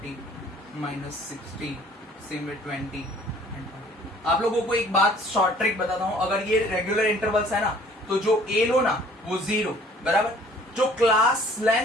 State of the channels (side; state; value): both; normal; correlation 0.55